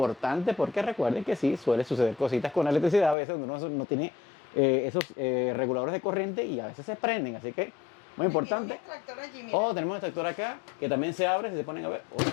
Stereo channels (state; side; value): drops out; right; at 3.2 s